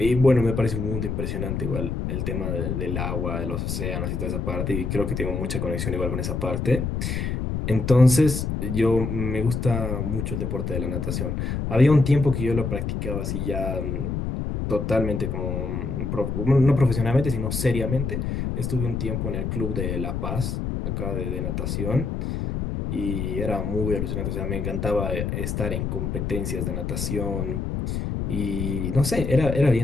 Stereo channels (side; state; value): left; noise; rumble, 2 dB below the sound